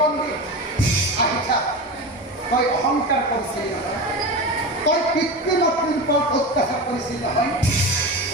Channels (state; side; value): normal; both; correlation 0.25